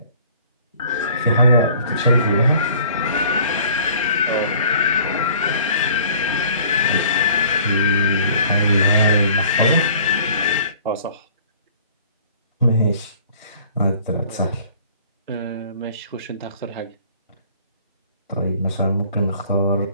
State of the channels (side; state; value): both; inverted; correlation -0.53